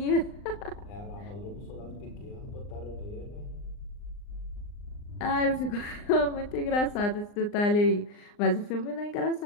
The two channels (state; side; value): late; right; 39 ms